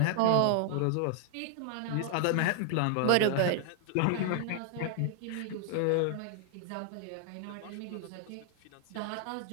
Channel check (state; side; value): different; both; correlation 0.00